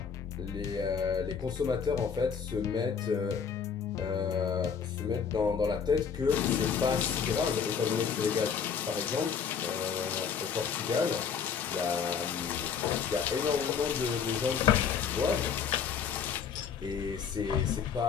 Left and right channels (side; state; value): right; quieter; 6.7 dB